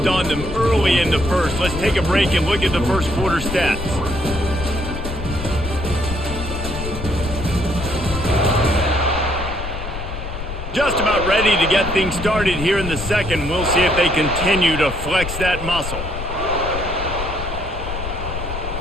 on them early in the first. Let's take a break and look at the first quarter stats. Just about ready to get things started here in the second. We'll see if they continue to flex that muscle.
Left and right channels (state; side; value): noise; left; rumble, 7 dB below the sound